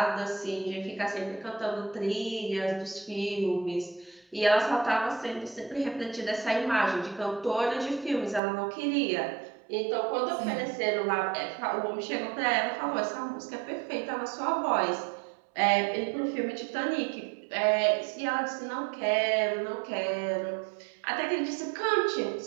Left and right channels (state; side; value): drops out; left; at 8.4 s